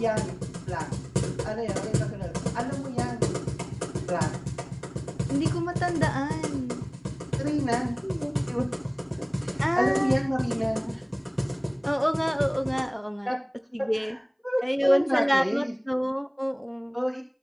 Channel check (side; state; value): both; identical; correlation 1.00